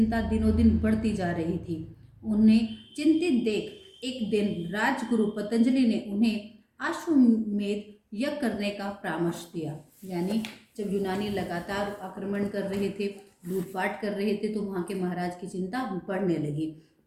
दिनों दिन बढ़ती जा रही थी। उन्हें चिंतित देख एक दिन राजगुरु पतंजलि ने उन्हें अश्वमेध यज्ञ करने का परामर्श दिया। यानी जब यूनानी लगातार आक्रमण कर रहे थे, लूटपाट कर रहे थे, तो वहाँ के महाराज की चिंता बढ़ने लगी।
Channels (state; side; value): identical; both; correlation 1.00